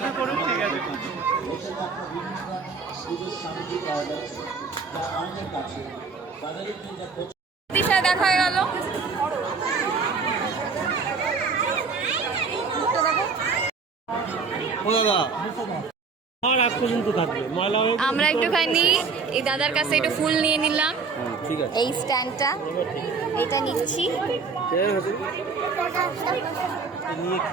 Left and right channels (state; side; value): quieter; left; 4.9 dB